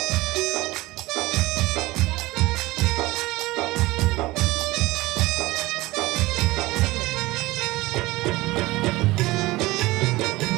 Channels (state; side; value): quieter; left; 20.0 dB